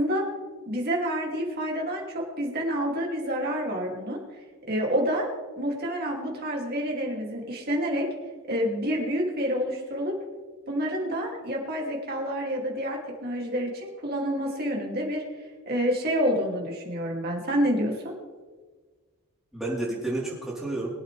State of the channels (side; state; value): both; normal; correlation 0.37